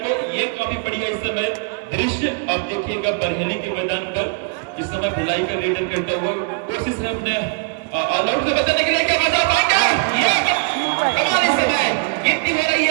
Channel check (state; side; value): quieter; left; 34.2 dB